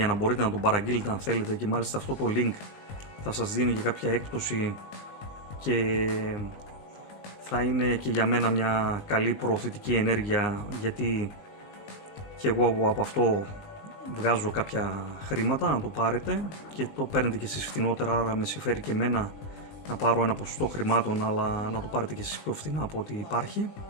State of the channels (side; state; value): right; late; 19 ms